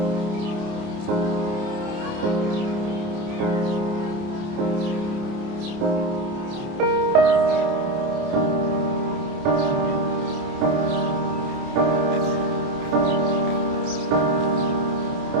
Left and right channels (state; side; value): late; left; 29 ms